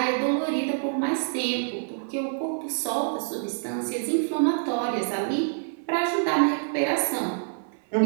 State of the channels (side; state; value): left; silent; 58 dB below the other